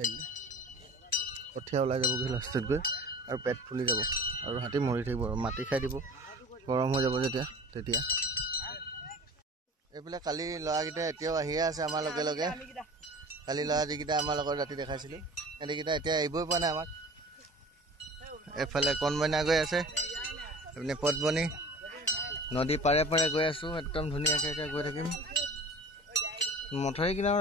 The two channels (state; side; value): normal; both; correlation 0.40